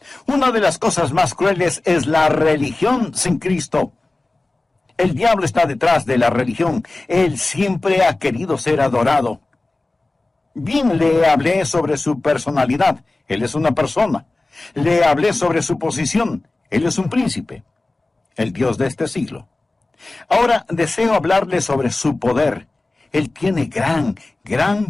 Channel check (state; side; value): quieter; right; 3.0 dB